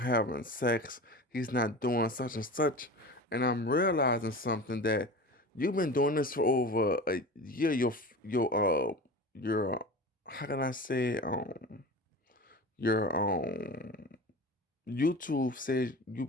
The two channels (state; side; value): normal; both; correlation 0.32